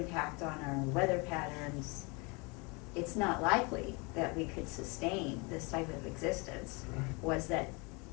on our weather patterns, it's not likely that we could sustain this type of existence, was that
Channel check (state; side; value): quieter; right; 29.1 dB